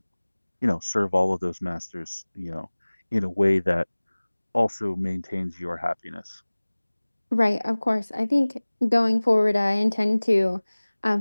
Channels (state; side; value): inverted; both; correlation -1.00